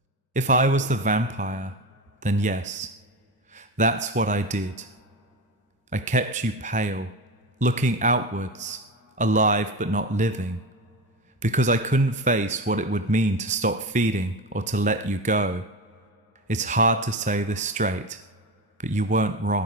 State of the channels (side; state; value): both; normal; correlation 0.21